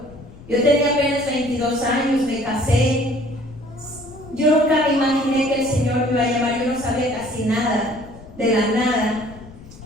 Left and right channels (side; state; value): left; noise; rumble, 19 dB below the sound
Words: Yo tenía apenas 22 años, me casé. Yo nunca me imaginé que el Señor me iba a llamar. Yo no sabía casi nada, de la nada.